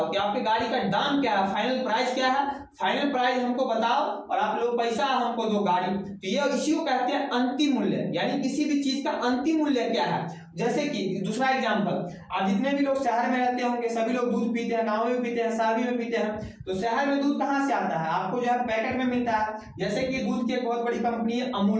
कि आपके गाड़ी का दाम क्या है, फाइनल प्राइस क्या है, फाइनल प्राइस हमको बताओ और आप लोग पैसा हमको दो गाड़ी। तो ये इसी को कहते हैं अंतिम मूल्य, यानी किसी भी चीज का अंतिम मूल्य क्या है। जैसे कि दूसरा एग्जांपल, आप जितने भी लोग शहर में रहते होंगे सभी लोग दूध पीते हैं, गाँव में पीते हैं, शादी में पीते हैं। तो शहर में दूध कहाँ से आता है? आपको जो है पैकेट में मिलता है। जैसे कि दूध की एक बहुत बड़ी कंपनी है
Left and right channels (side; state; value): both; identical; correlation 1.00